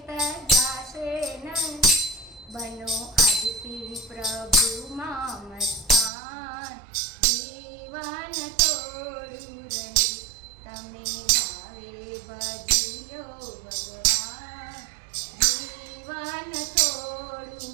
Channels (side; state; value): left; drops out; at 6.1 s